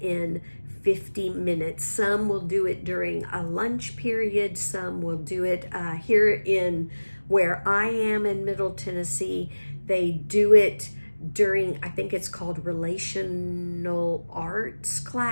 50 minutes. Some will do it during a lunch period. Some will do it here in where I am in Middle Tennessee. They do it during, I think it's called relational arts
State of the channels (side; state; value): both; inverted; correlation -1.00